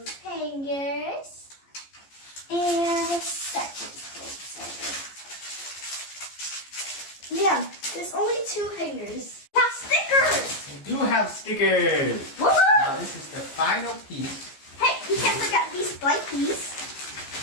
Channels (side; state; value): right; late; 14 ms